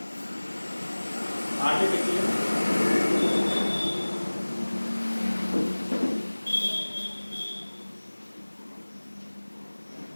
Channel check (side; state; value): both; inverted; correlation -1.00